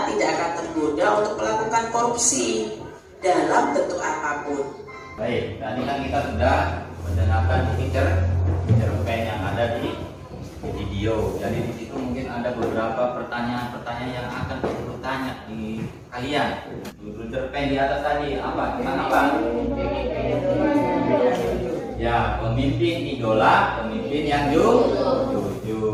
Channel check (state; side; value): identical; both; correlation 1.00